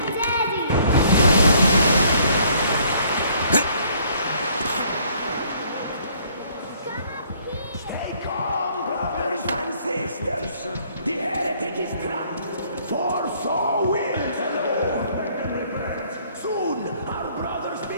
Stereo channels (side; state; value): both; inverted; correlation -0.61